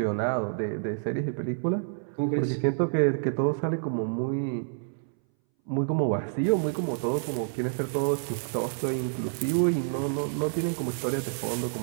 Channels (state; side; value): silent; left; 59 dB below the other